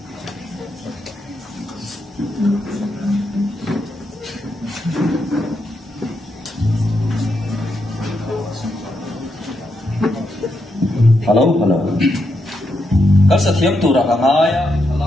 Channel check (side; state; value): both; normal; correlation 0.82